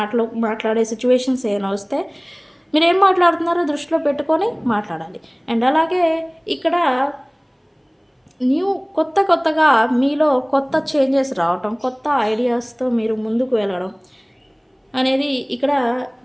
మాట్లాడే సిచ్యువేషన్స్ ఏమైనా వస్తే మీరేం మాట్లాడుతున్నారో దృష్టిలో పెట్టుకొని మాట్లాడాలి. అండ్ అలాగే ఇక్కడ కొత్తగా మీలో కొత్త చేంజెస్ రావటం, కొత్త ఐడియాస్‌తో మీరు ముందుకు వెళ్ళడం అనేది ఇక్కడ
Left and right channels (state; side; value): identical; both; correlation 1.00